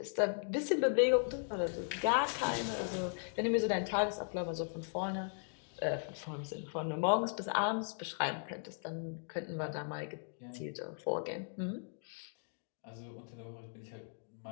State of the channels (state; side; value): silent; right; digital silence